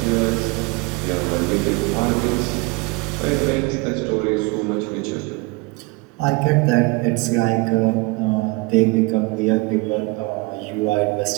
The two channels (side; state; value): left; quieter; 24.9 dB